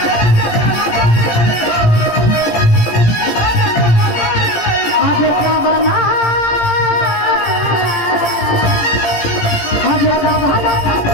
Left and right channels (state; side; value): late; right; 17 ms